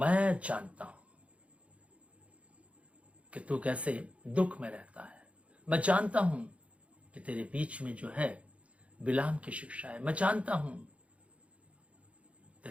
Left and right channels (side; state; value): left; late; 0.063 ms